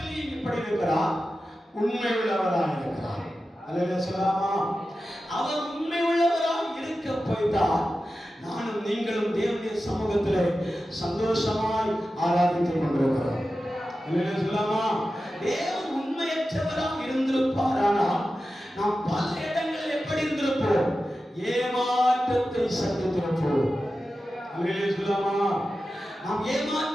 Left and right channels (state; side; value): normal; both; correlation 0.93